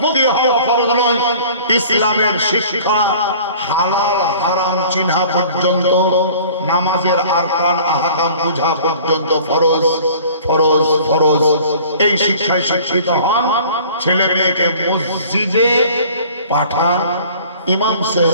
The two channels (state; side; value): inverted; both; correlation -0.48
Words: হওয়া ফরজ নয়। ইসলামের শিক্ষা হালাল হারাম চিহ্না পর্যন্ত, নামাজের আরকান আহকাম বুঝা পর্যন্ত ফরজ ফরজ ফরজ। এই শিক্ষায় শিক্ষিত হন, ছেলে মেয়েকে মসজিদে পাঠান, ইমাম